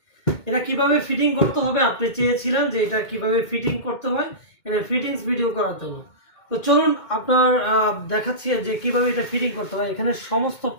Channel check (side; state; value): right; late; 2.2 ms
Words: এটা কিভাবে ফিটিং করতে হবে আপনি চেয়েছিলেন যে এটা কিভাবে ফিটিং করতে হয়, এটা ফিটিংস ভিডিও করার জন্য। তো চলুন আপনার দেখাচ্ছি যে কিভাবে এটা ফিটিং করতে হয়। এখানে সমস্ত